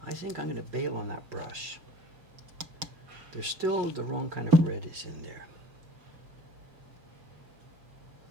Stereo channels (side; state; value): left; late; 5.6 ms